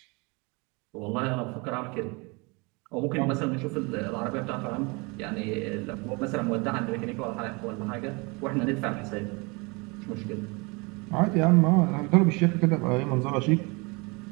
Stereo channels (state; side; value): quieter; left; 28.4 dB